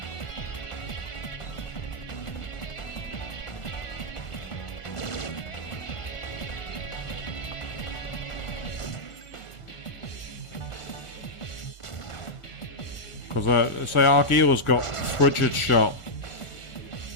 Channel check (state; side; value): late; right; 1.5 ms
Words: Because, say, Argila's got frigid shot.